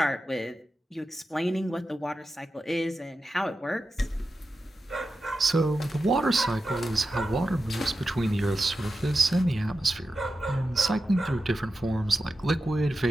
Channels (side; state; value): both; normal; correlation 0.91